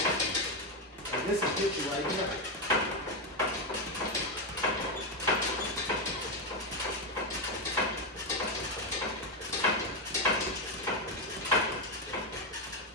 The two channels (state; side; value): normal; both; correlation 0.07